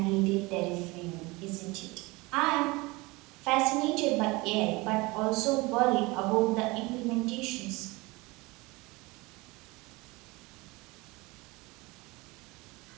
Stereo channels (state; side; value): quieter; left; 23.8 dB